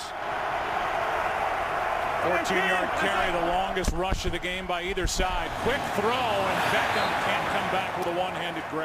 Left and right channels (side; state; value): both; identical; correlation 1.00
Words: 14-yard carry, the longest rush of the game by either side. Quick throw, and Beckham can't come back with a one-handed